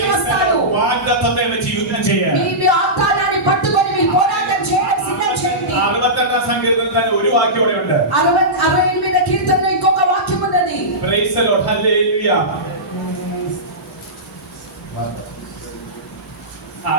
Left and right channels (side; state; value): both; normal; correlation -0.16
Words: వస్తాడు. വാഗ്ദത്തത്തെ വെച്ച് യുദ്ധം ചെയ്യാൻ. మీ వాగ్దానాన్ని పట్టుకొని మీరు పోరాటం చేయడం సిద్ధం చేయండి. 68ാം സങ്കീർത്തനത്തിൽ തന്നെ ഒരു വാക്യം ഇവിടെ ഉണ്ട്. 68వ కీర్తనలో ఇంకొక వాక్యం ఉన్నది. Praise the Lord. Hallelujah.